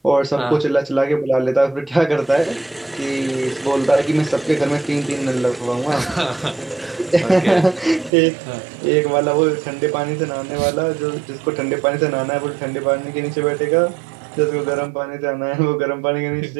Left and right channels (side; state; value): left; drops out; at 8.1 s